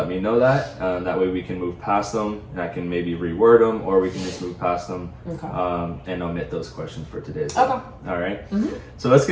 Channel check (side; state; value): both; identical; correlation 1.00